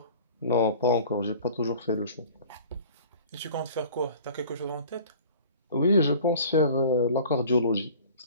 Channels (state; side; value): inverted; both; correlation -0.45